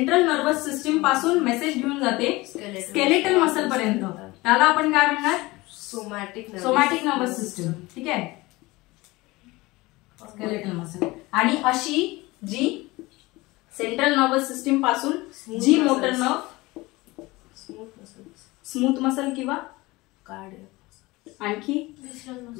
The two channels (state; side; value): quieter; right; 21.2 dB